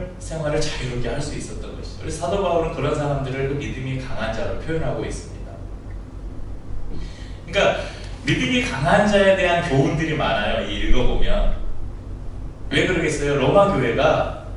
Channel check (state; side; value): identical; both; correlation 1.00